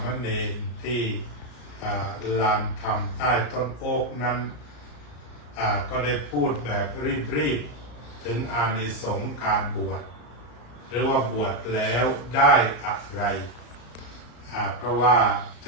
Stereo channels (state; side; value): late; right; 34 ms